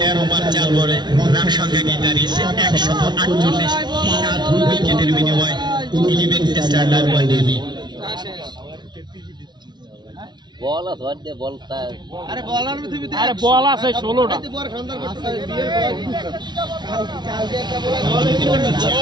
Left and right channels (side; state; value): left; late; 0.21 ms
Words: ওভার 4 বলে রান সংখ্যা গিয়ে দাঁড়িয়েছে 148, 7 উইকেটের বিনিময়ে 11 টেস্টার রান বানিয়ে বল আছে ওয়ার্ডে বল তার আরে বলার পৃথিবীতে আরে বল আছে 16টা বড় সুন্দর করতে বিয়ের পর কালকে একটা বল